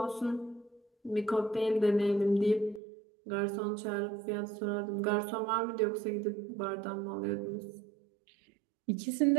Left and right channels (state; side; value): drops out; left; at 2.8 s